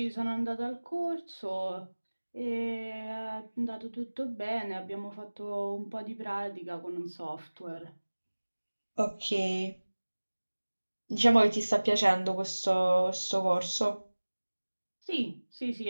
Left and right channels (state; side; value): inverted; both; correlation -1.00